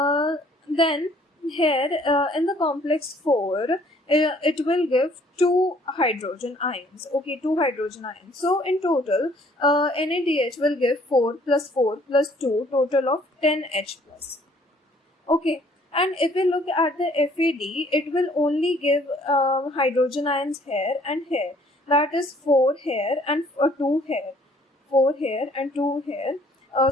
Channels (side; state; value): both; normal; correlation 0.60